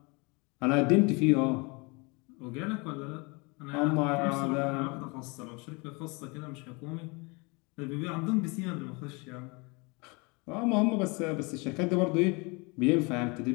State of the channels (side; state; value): right; quieter; 28.7 dB